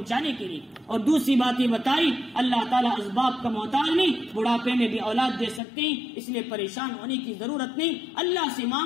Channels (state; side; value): drops out; right; at 5.6 s